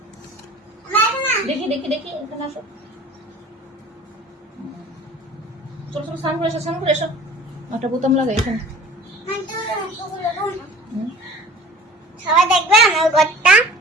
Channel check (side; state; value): both; normal; correlation 0.44